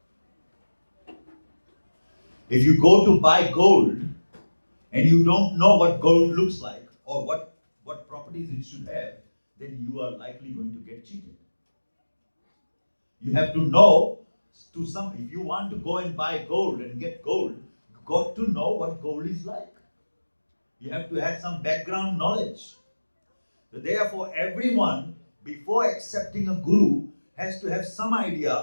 If you go to buy gold and you don't know what gold looks like or what properties it should have, then you are likely going to get cheated. You have to know if you want to go and buy gold and get gold, you got to know what gold is like. You have to have some background knowledge. So therefore, everyone, before accepting a guru, has to have some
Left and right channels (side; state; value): both; inverted; correlation -1.00